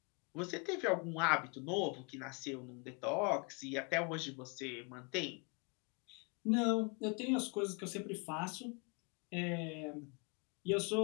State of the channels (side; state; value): right; quieter; 32.7 dB